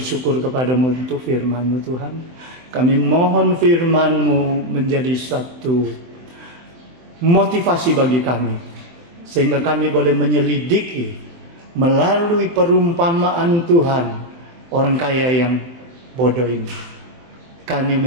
kepadamu untuk firman-Mu Tuhan. Kami mohon firman-Mu menjadi satu motivasi bagi kami. Sehingga kami boleh menyelidiki melalui perumpamaan Tuhan orang kaya yang bodoh ini. Kami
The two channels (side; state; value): left; late; 23 ms